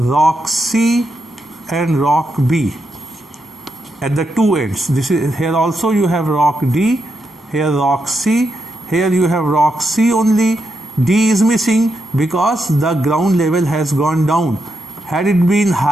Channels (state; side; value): normal; both; correlation 0.84